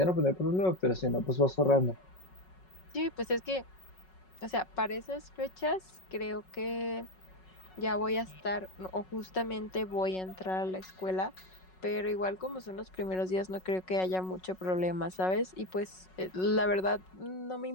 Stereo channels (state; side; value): late; right; 5.4 ms